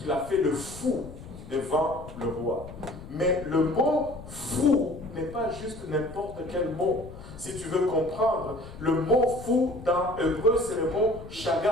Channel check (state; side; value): noise; left; rumble, 15 dB below the sound